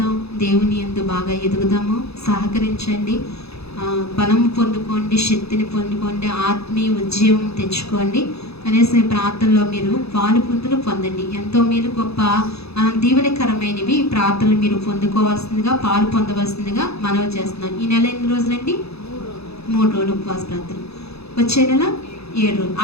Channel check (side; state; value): right; late; 0.79 ms